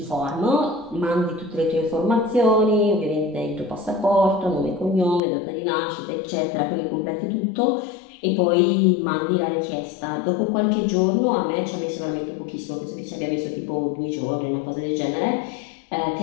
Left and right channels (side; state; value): right; drops out; at 5.2 s